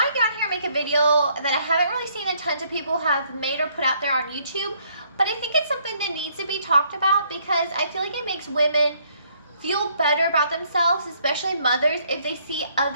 to get on here and make a video that I haven't really seen a ton of people have made or put out there on YouTube, but I think it's something that needs to be talked about because I feel like it makes women feel better about themselves, especially mothers, if they see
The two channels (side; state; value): both; inverted; correlation -0.67